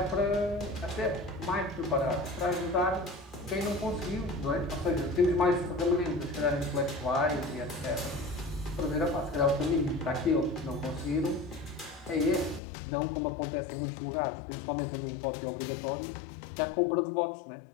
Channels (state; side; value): drops out; right; at 12.6 s